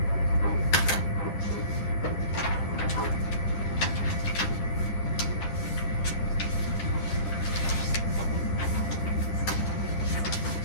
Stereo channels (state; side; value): late; right; 10 ms